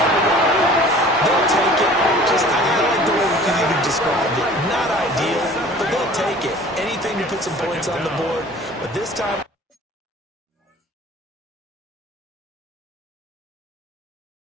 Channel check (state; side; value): normal; both; correlation 0.47